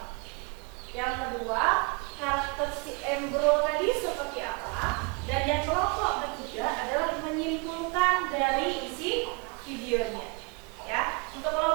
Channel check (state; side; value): quieter; left; 31.0 dB